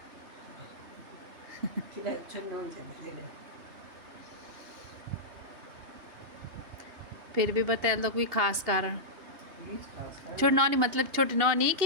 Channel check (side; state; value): left; late; 2.9 ms